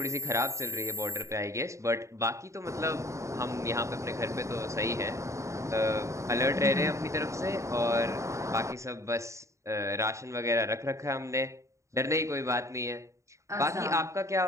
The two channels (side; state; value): left; late; 0.14 ms